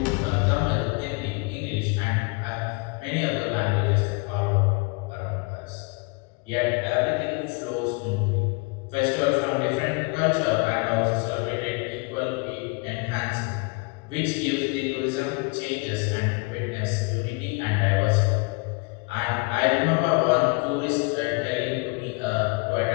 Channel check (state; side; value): quieter; right; 29.9 dB